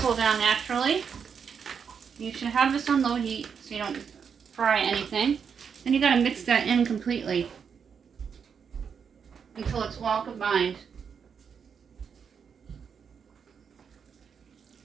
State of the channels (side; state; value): left; quieter; 6.7 dB